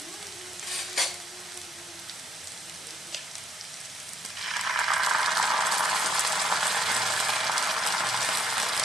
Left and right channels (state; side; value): normal; both; correlation 0.73